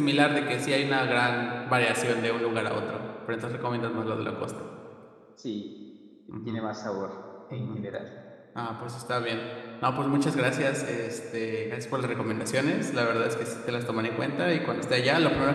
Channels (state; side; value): identical; both; correlation 1.00